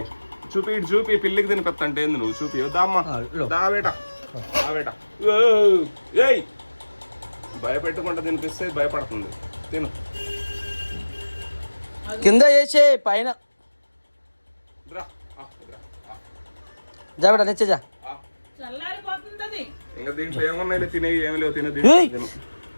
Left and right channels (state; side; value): inverted; both; correlation -1.00